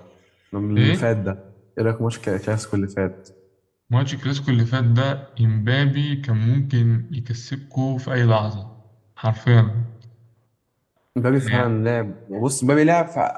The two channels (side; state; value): both; identical; correlation 1.00